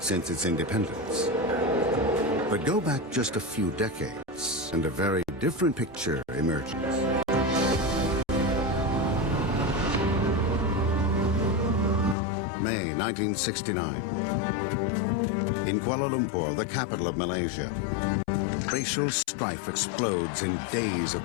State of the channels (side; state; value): right; drops out; at 12.2 s